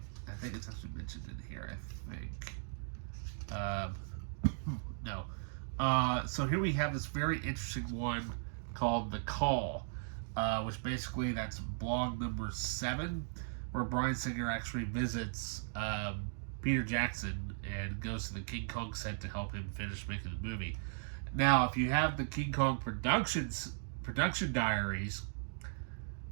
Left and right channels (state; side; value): silent; left; digital silence